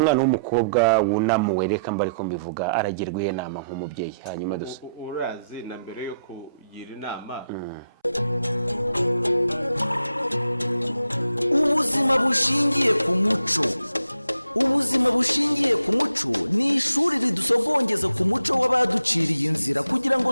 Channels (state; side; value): inverted; both; correlation -0.78